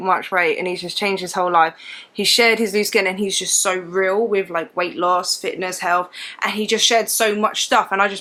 weight and he's just changed his whole life. He shared his loose skin and he's just so real with like weight loss, fitness, health, and he just shared so much stuff, and I just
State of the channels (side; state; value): both; identical; correlation 1.00